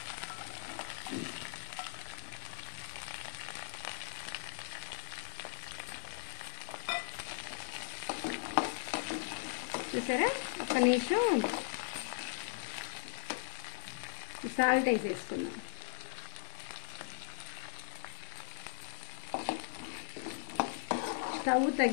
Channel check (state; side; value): silent; right; digital silence